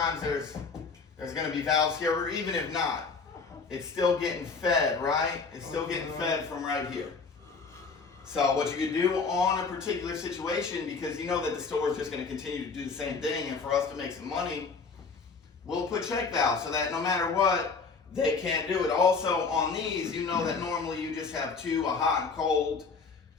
there's going to be valves here, or even if not, it's still getting fed, right? It's still getting fed from right here. So what you can do on a particular situation, because you know that the store is just going to continue to do the same thing, and for us to make some money, we'll put check valves so that no matter what, they can't do it. Also on these, you know that normally you just have two, a hot and cold,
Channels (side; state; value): right; quieter; 4.8 dB